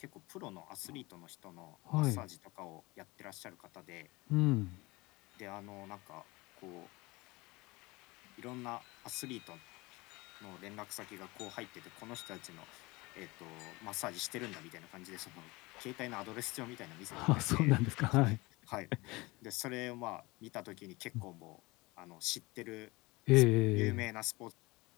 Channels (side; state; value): right; quieter; 23.1 dB